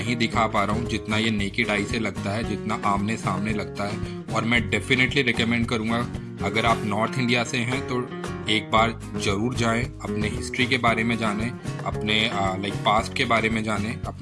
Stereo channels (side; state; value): both; identical; correlation 1.00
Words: दिखा पा रहा हूँ जितना ये नेकेड आई से लगता है, जितना आमने सामने लगता है। और मैं डेफिनेटली रिकमेंड करूँगा, अगर आप नॉर्थ इंडिया से हैं तो एक बार ज़रूर जाएं, अपने हिस्ट्री के बारे में जानें, अपने लाइक पास्ट के बारे में जानें,